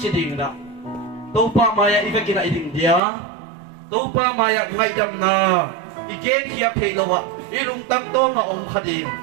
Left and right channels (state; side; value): drops out; left; at 3.0 s